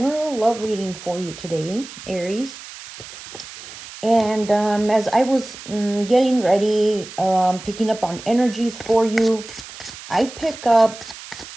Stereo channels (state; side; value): noise; right; hiss, 15 dB below the sound